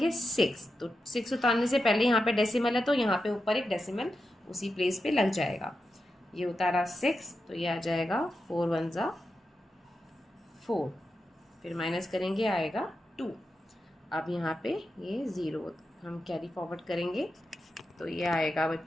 6, तो 6 उतारने से पहले यहाँ पे डेसिमल है तो यहाँ पे ऊपर एक डेसिमल उसी प्लेस पे लग जाएगा। ये उतारा 6 तो ये आ जाएगा 4 1 ज़ा 4, फिर माइनस करेंगे आएगा 2। अब यहाँ पे ये 0 हम कैरी फॉरवर्ड करेंगे तो ये आएगा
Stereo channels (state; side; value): normal; both; correlation 0.89